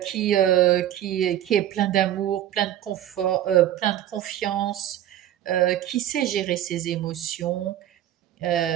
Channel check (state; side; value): quieter; left; 12.0 dB